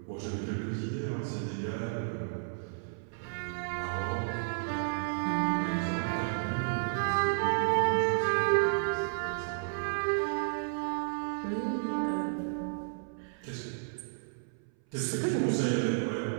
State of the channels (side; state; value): left; silent; 56 dB below the other